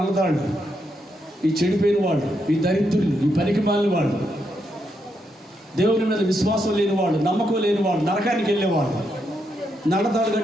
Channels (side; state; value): both; normal; correlation 0.80